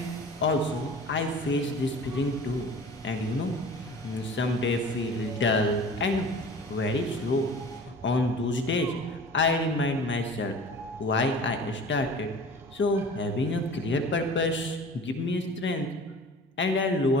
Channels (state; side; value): normal; both; correlation 0.42